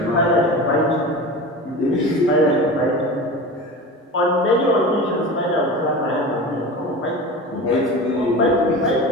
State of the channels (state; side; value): normal; both; correlation 0.31